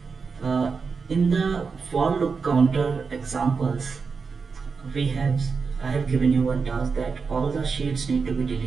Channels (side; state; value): left; quieter; 5.1 dB